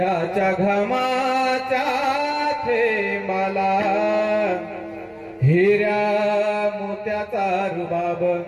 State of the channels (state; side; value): identical; both; correlation 1.00